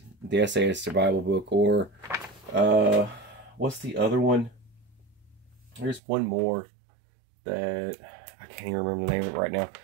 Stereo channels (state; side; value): drops out; left; at 6.0 s